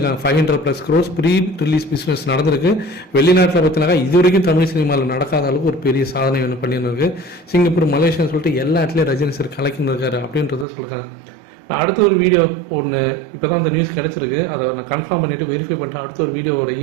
500+ crores ப்ரீ ரிலீஸ் பிஸ்னஸ் நடந்திருக்கு. வெளிநாட்டில் பார்த்தினாக்கா இது வரைக்கும் தமிழ் சினிமாவில் நடக்காத அளவுக்கு ஒரு பெரிய சாதனை ஒன்று பண்ணிருக்கு. சிங்கப்பூர் மலேசியான்னு சொல்லிட்டு எல்லா இடத்துலையும் ரஜினி சார் கலக்கின்னு இருக்காரு அப்படின்றத சொல்லியிருக்காங்க. நான் அடுத்த ஒரு வீடியோ ஒன்று இப்போ தான் அந்த நியூஸ் கிடச்சிருக்கு, அதை நான் கன்ஃபார்ம் பண்ணிவிட்டு வெரிஃபை பண்ணிட்டு அடுத்த ஒரு வீடியோ ஒரு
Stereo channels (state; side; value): drops out; left; at 10.7 s